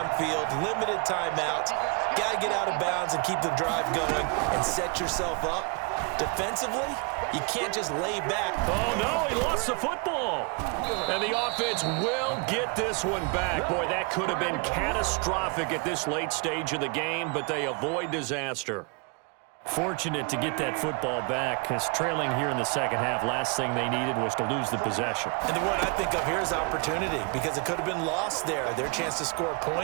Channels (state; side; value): quieter; left; 31.3 dB